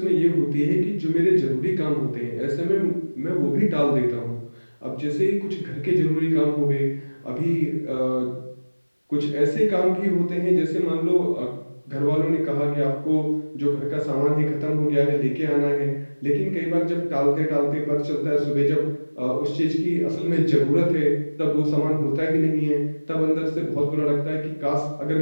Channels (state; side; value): inverted; both; correlation -1.00